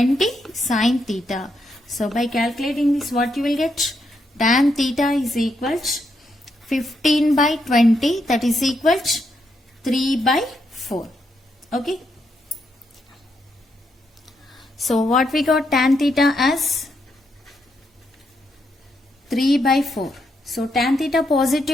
sin theta. So by calculating this, what you will get? Tan theta is equal to 15 by 20, that is equal to 3 by 4. Okay. So what we got? Tan theta as 3 by 4. So tan theta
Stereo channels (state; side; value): normal; both; correlation 0.80